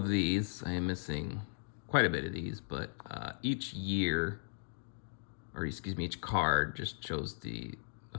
these. I am missing quite a bit of these, but each year, or excuse me, each card just shows the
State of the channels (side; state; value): right; silent; digital silence